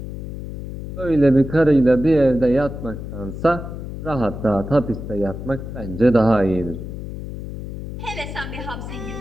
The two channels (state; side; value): noise; left; hum, 8 dB below the sound